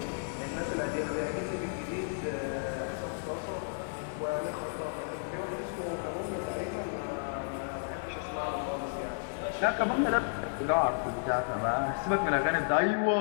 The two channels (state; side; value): silent; right; digital silence